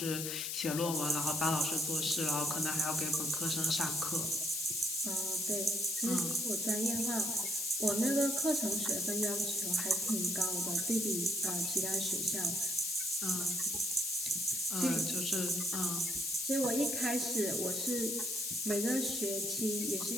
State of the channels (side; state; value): left; noise; hiss, 2 dB below the sound